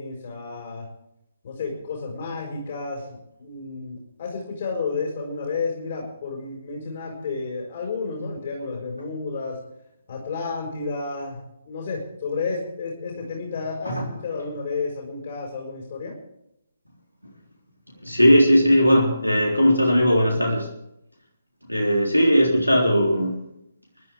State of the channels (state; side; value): inverted; both; correlation -0.87